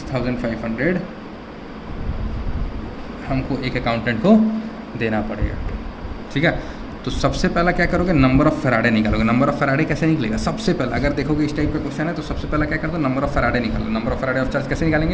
हमको एक अकाउंटेंट को देना पड़ेगा। ठीक है, तो सबसे पहला क्या करोगे, नंबर ऑफ़ फैराडे निकालोगे। नंबर ऑफ़ फैराडे कैसे निकलेगा, सबसे पहला अगर देखोगे इस टाइप का क्वेश्चन है तो सबसे पहला क्या कर दो, नंबर ऑफ़ फैराडे निकालो। Number of Faraday of charge कैसे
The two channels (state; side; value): identical; both; correlation 1.00